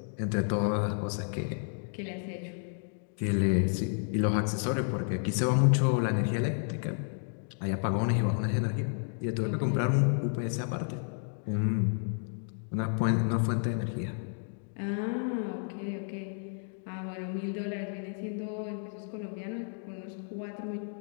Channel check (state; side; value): silent; right; 57 dB below the other